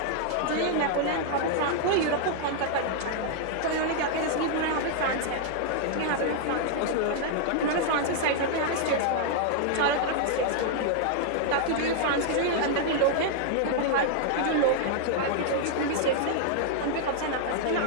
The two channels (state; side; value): different; both; correlation -0.01